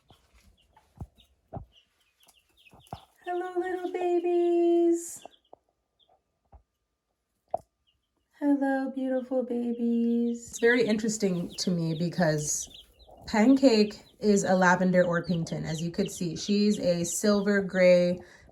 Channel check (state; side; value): identical; both; correlation 1.00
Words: Hello, little babies. Hello, beautiful babies. It's very interesting to me because Pancake is a lavender Orpington. As you could see, she's a silver gray